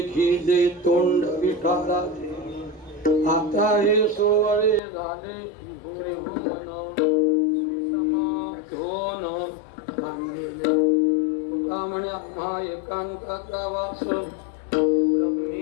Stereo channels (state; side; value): drops out; right; at 4.8 s